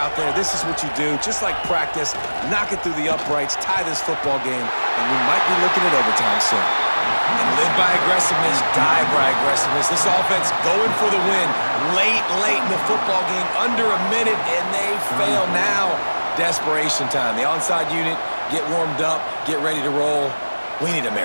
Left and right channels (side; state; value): both; inverted; correlation -1.00